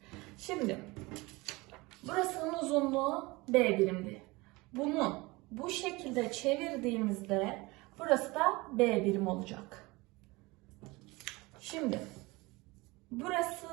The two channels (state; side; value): quieter; left; 23.1 dB